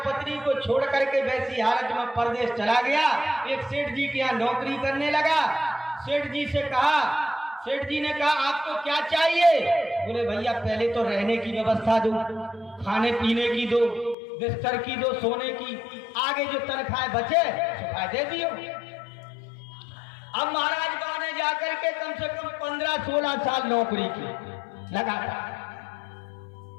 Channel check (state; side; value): drops out; right; at 14.2 s